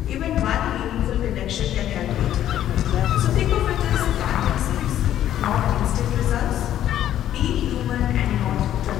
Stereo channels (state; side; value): quieter; right; 11.6 dB